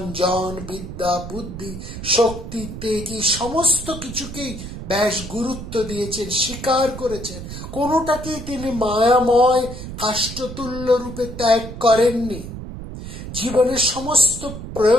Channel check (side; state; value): right; noise; rumble, 10 dB below the sound